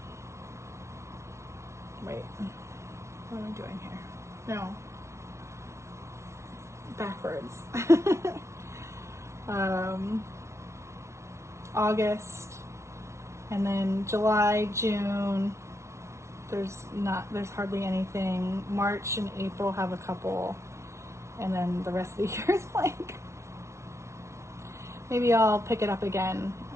Wait, what am I doing here? No. Backwards. August, and then July, June, there's hardly anything. March and April have a couple, and then the rest of the year is blank. Maybe I'll pick it up again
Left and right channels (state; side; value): late; left; 0.13 ms